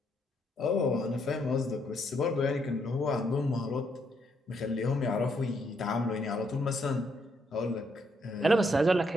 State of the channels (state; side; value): normal; both; correlation 0.74